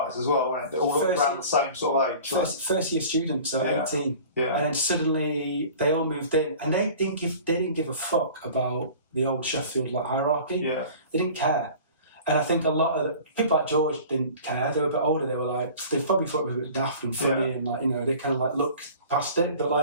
as well, weren't they? All around the same sort of age. First year students, so 18. Yeah. And then suddenly they all moved in, and they didn't give a fuck about the old Sheffield like hierarchy. Yeah. They didn't care. And I think a lot of people like George didn't care. They were a bit older. They were like, they probably thought it was a bit daft and funny, and like, you know, they kind of like looked past it. But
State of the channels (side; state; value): both; inverted; correlation -0.43